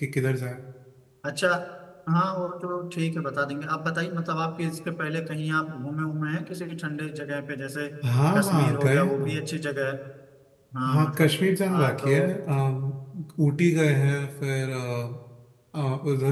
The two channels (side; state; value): both; identical; correlation 1.00